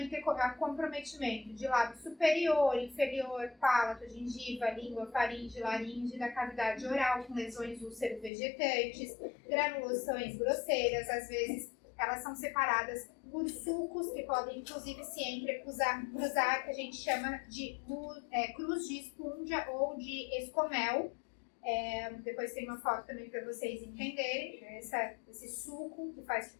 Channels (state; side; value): drops out; right; at 8.3 s